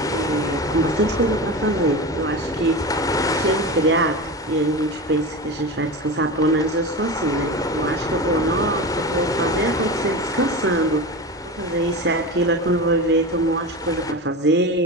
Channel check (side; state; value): both; normal; correlation 0.25